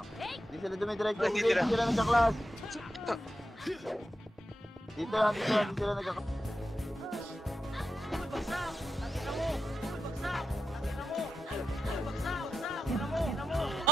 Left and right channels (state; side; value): normal; both; correlation 0.88